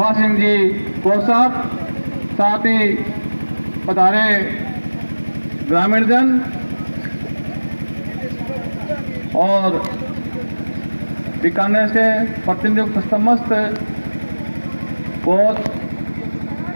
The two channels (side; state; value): both; inverted; correlation -1.00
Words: सिंह जी को साहब, साथ ही पधारे ग्रामीण जन और बीकानेर से प्रतिनियुक्त समस्त कोच